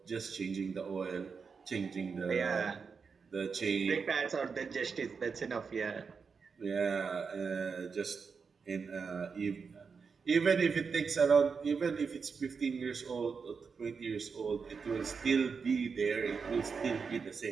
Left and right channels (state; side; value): quieter; left; 5.5 dB